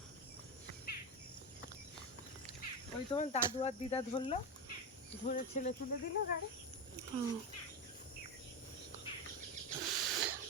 ওই তোমার দাদু আর দিদা ধরলো, ধরে ছেলে তুলে দিল গাড়ি।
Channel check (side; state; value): both; normal; correlation 0.15